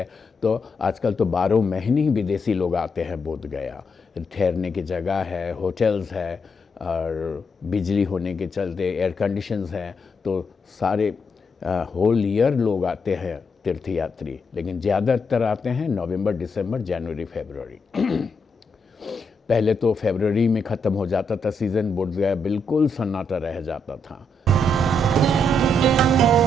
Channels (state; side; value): normal; both; correlation 0.79